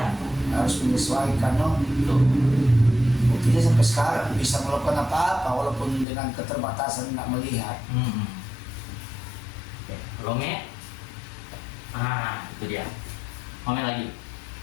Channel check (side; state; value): right; drops out; at 6.1 s